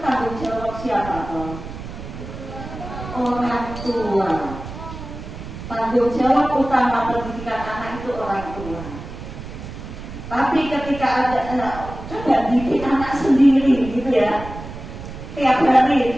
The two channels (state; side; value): noise; right; rumble, 11 dB below the sound